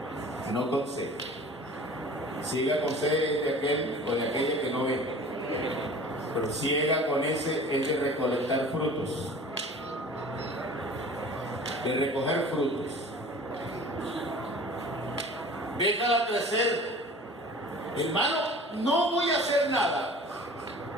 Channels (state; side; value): normal; both; correlation 0.43